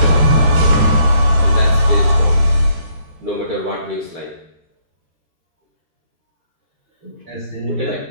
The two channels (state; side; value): late; left; 13 ms